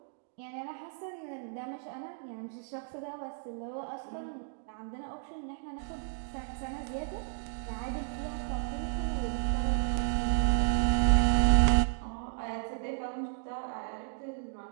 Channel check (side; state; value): left; silent; digital silence